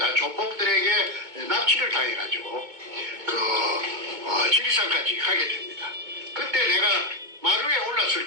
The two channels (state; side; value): late; left; 2.2 ms